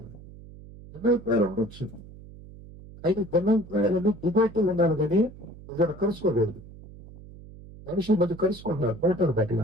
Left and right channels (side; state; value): right; noise; hum, 18 dB below the sound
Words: ఉండొచ్చు. అయితే భిన్నాభిప్రాయాలను డిబేట్లు ఉండాలి కానీ ఇక్కడ కలుసుకోకూడదు. మనుషుల మధ్య కలుసుకుంటారు, పోతారు